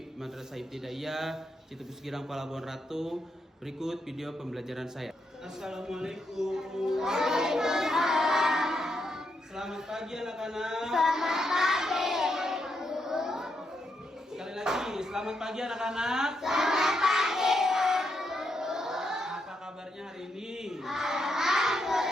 Madrasah Ibtidaiyah Citepus Girang Palabuhan Ratu. Berikut video pembelajaran saya. Assalamualaikum. Waalaikumsalam. Selamat pagi anak-anak. Selamat pagi. Sekali lagi, selamat pagi anak-anak. Selamat pagi. Apa kabarnya hari ini?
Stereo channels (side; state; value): both; normal; correlation 0.80